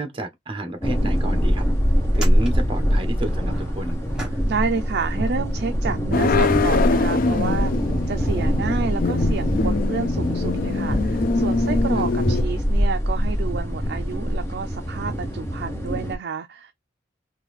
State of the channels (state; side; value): normal; both; correlation 0.71